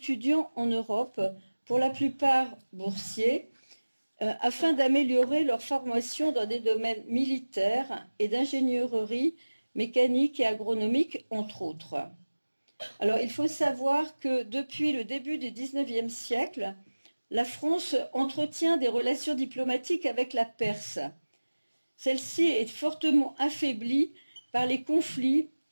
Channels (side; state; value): both; inverted; correlation -1.00